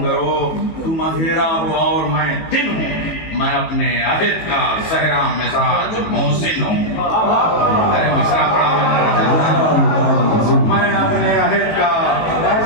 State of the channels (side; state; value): right; late; 18 ms